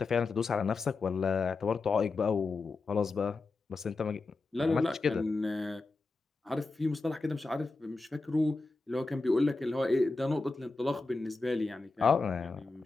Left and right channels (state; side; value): quieter; right; 3.7 dB